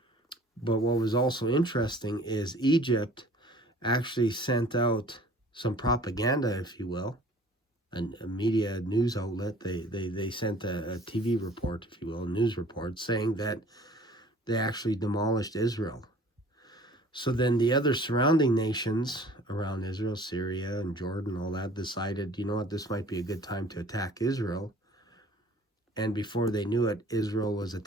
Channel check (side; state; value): both; normal; correlation 0.50